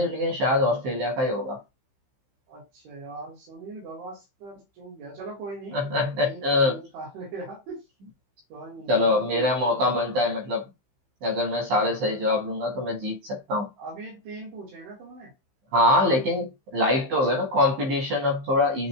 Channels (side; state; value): left; late; 15 ms